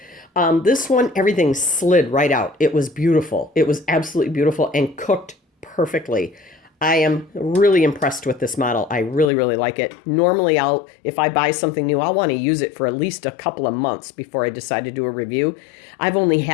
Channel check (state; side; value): drops out; right; at 9.2 s